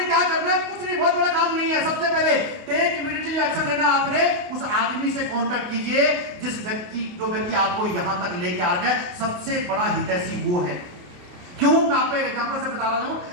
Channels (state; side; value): late; left; 28 ms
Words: क्या करना है, कुछ नहीं, बहुत बड़ा काम नहीं है। सबसे पहले टेक इमीडिएटली एक्शन लेना। आपने उस आदमी से कांटेक्ट कीजिए जो व्यक्ति आपको यहां तक लेके आ रहा है। सबसे बड़ा हितैषी वो है। क्यों, मैं आपको एक एग्जांपल से बता रहा हूं।